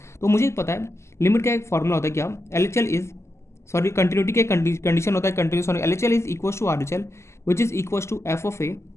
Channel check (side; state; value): right; late; 0.13 ms